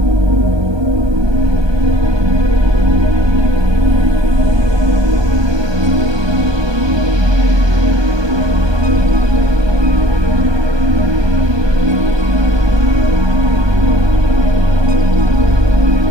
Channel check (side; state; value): left; late; 1.2 ms